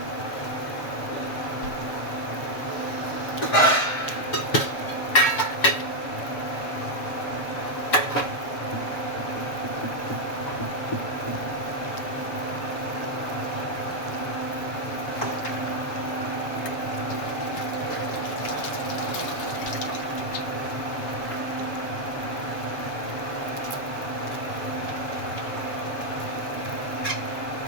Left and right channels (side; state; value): right; late; 7.1 ms